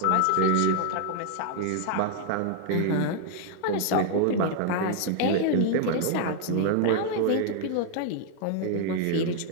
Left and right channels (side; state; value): both; different; correlation 0.00